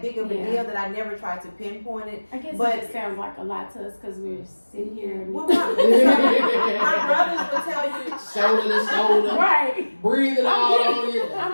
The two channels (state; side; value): inverted; both; correlation -1.00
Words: big of a deal that I never tried to pinpoint it. I guess But it just sounds like a lot to us because we're sitting here and well, my brothers would tell you, Shoulder to shoulder. right. Breathing all on you.